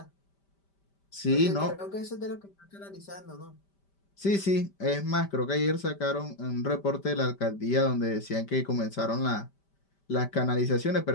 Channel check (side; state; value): right; late; 5.1 ms